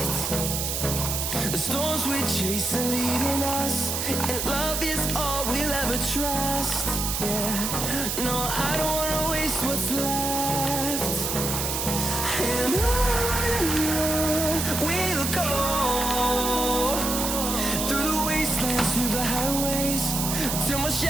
The storms we chase are leading us, and love is all we'll ever trust. Yeah, no, I don't wanna waste what's left. And on we'll go, through the wastelands, through the highways, till my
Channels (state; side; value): noise; right; hiss, 1 dB below the sound